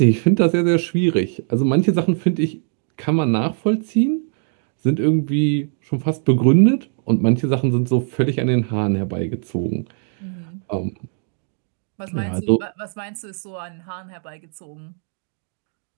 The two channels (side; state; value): left; silent; 56 dB below the other